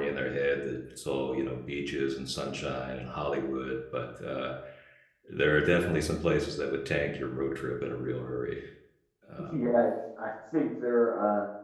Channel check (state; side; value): identical; both; correlation 1.00